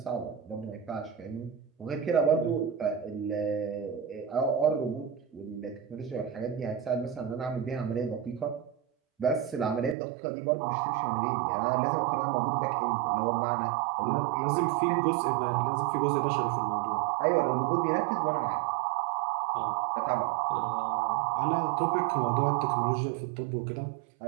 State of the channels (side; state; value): left; drops out; at 10.0 s